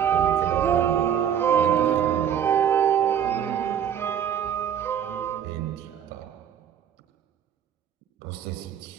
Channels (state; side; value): quieter; left; 9.0 dB